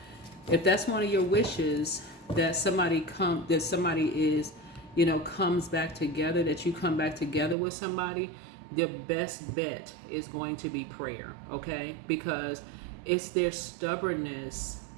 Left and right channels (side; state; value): left; drops out; at 7.6 s